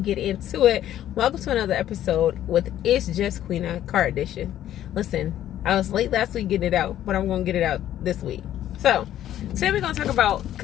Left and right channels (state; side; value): quieter; right; 12.0 dB